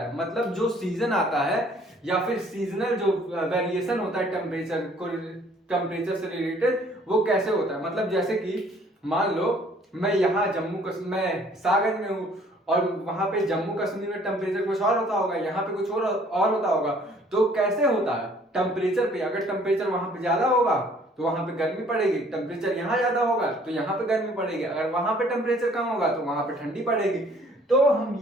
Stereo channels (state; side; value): normal; both; correlation 0.58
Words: है, मतलब जो सीजन आता है या फिर सीजनल जो वेरिएशन होता है टेम्परेचर से रिलेटेड, वो कैसे होता है। मतलब जैसे कि मान लो मैं यहाँ मैं सागर में हूँ और वहां पे जम्मू कश्मीर में टेम्परेचर कुछ और होता होगा, यहाँ पे कुछ और होता होगा। तो कैसे होता है टेम्परेचर पे, अगर टेम्परेचर वहां पे ज्यादा होगा तो वहां पे गर्मी पड़ेगी, टेम्परेचर यहाँ ज्यादा होगा तो यहाँ पे गर्मी पड़ेगी, अगर वहां पे टेम्परेचर कम होगा तो वहां पे ठंडी पड़ेगी। तो हम